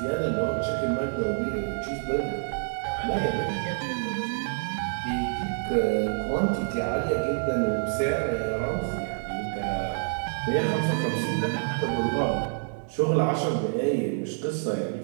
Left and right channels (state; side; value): silent; left; 60 dB below the other